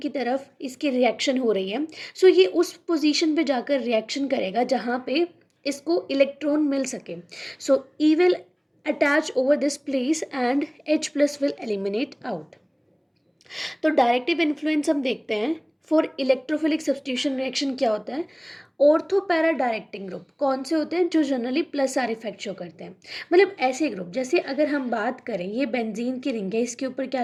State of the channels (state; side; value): identical; both; correlation 1.00